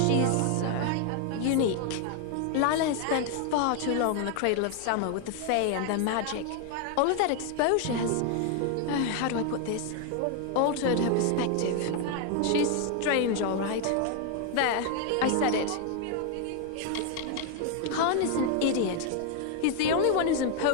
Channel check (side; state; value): both; different; correlation 0.00